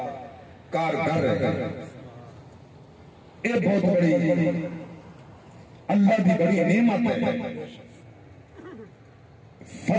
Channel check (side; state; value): both; identical; correlation 1.00